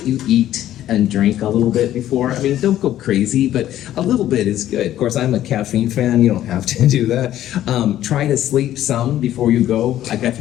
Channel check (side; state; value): right; quieter; 12.6 dB